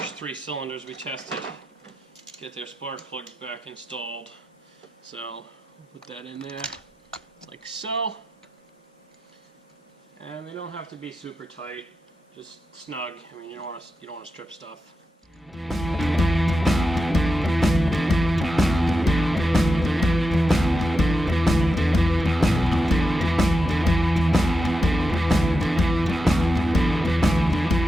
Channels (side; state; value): both; normal; correlation 0.89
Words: 3 cylinders we tested, get their spark plugs back installed. So we'll put that in there like so. And they don't have to be super tight, just snug. I mean, you don't want to strip stuff.